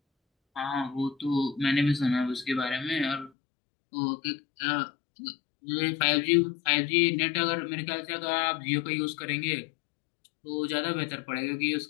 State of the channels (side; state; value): right; drops out; at 3.3 s